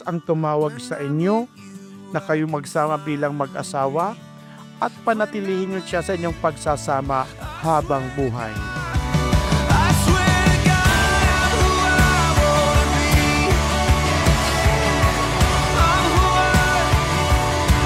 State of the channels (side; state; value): both; identical; correlation 1.00